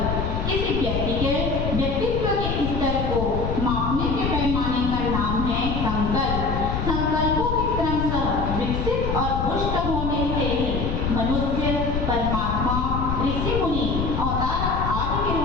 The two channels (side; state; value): left; noise; rumble, 2 dB below the sound